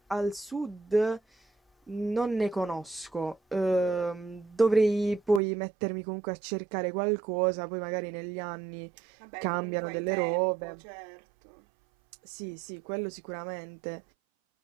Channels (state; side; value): drops out; left; at 5.4 s